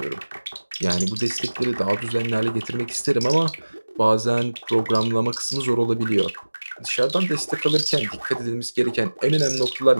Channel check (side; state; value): both; inverted; correlation -1.00